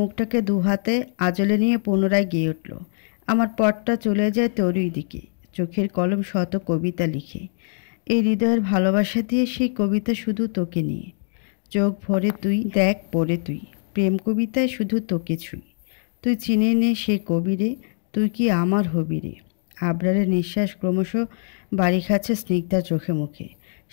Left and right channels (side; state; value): right; silent; digital silence